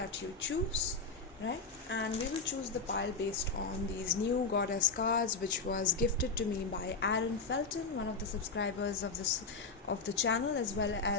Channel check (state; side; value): quieter; right; 4.3 dB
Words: you choose, right? And we will choose the pile based on these new goddess cards, which was gifted to me by Aaron Felton, one of the subscribers of the channel, as well